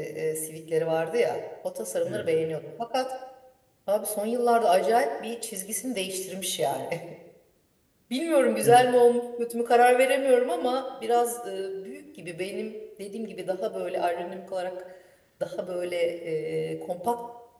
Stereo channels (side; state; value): both; identical; correlation 1.00